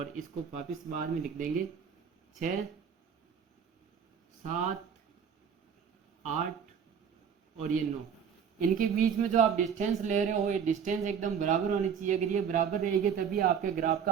इसको वापस बाद में लिख देंगे। 6 7 8 और ये 9। इनके बीच में जो आप डिस्टेंस ले रहे हो, ये डिस्टेंस एकदम बराबर होनी चाहिए। अगर ये बराबर रहेगी तभी आपके ग्राफ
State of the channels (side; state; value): left; quieter; 7.4 dB